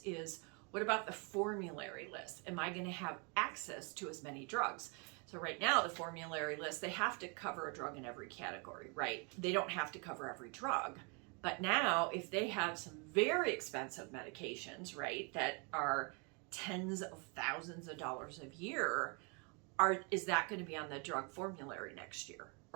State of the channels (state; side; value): quieter; left; 33.9 dB